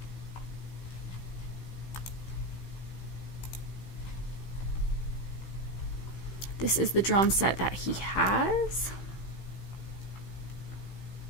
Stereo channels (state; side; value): late; right; 15 ms